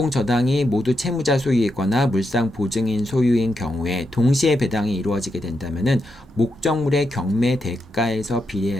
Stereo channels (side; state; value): both; normal; correlation 0.84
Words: 모두 채무자 소유이거나 물상 보증인 소유인 경우에 동시에 배당이 이루어지게 된다면은 목적물의 경매 대가에서